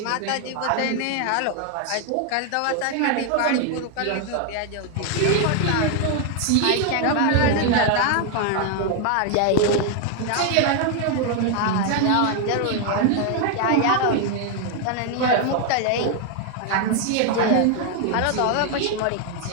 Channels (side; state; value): both; different; correlation 0.01